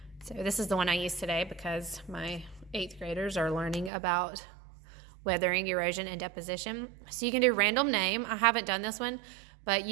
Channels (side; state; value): left; drops out; at 3.9 s